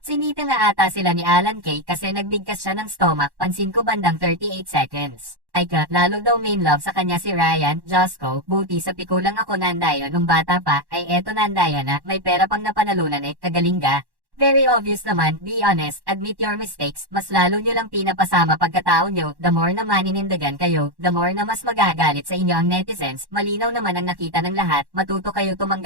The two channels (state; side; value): late; left; 1.1 ms